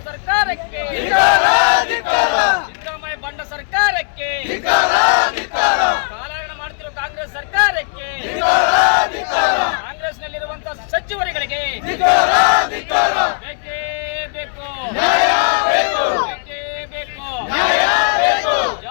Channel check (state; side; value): silent; right; 60 dB below the other